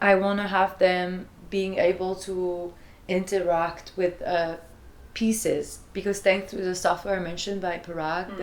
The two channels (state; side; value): identical; both; correlation 1.00